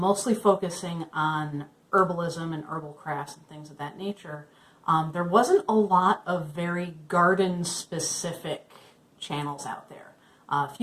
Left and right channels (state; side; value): identical; both; correlation 1.00